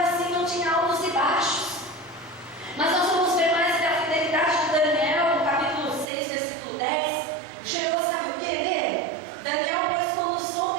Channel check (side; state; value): left; drops out; at 6.1 s